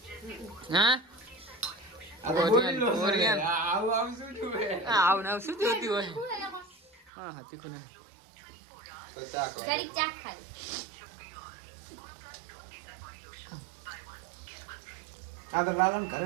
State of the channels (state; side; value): drops out; left; at 7.1 s